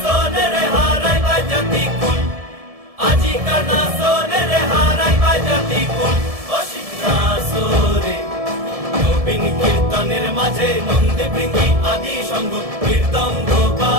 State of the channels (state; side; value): late; left; 1.7 ms